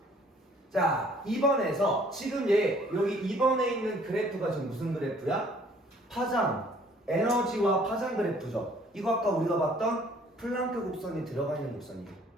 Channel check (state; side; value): normal; both; correlation 0.57